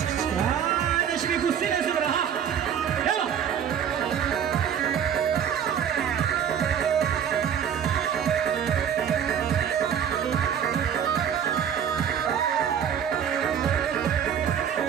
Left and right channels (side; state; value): left; quieter; 8.5 dB